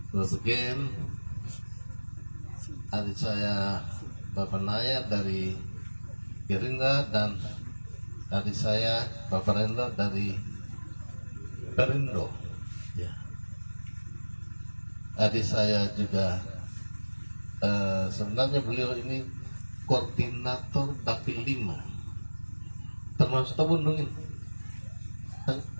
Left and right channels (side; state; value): both; inverted; correlation -1.00